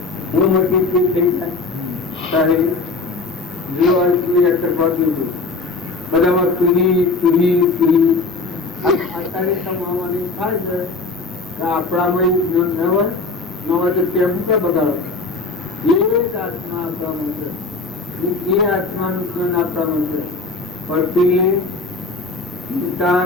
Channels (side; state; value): right; quieter; 3.7 dB